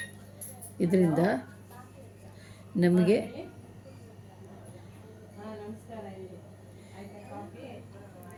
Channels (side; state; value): both; identical; correlation 1.00